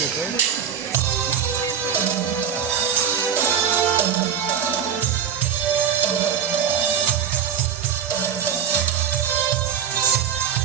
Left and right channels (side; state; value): left; quieter; 8.2 dB